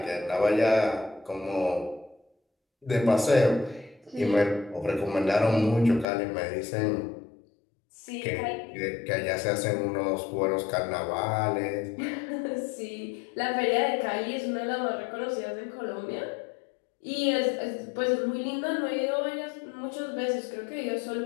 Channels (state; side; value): drops out; right; at 6.1 s